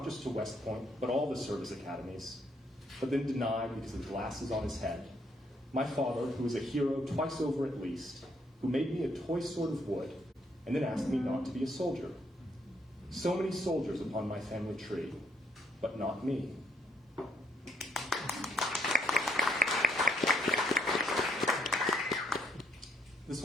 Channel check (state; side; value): normal; both; correlation 0.69